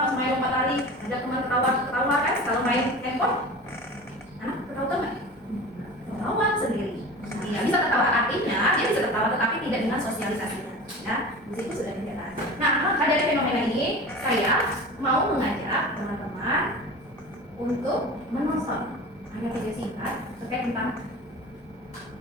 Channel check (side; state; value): both; normal; correlation 0.35